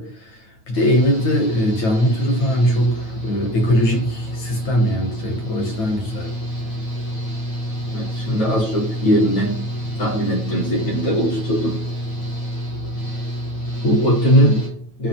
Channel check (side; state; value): right; late; 9.1 ms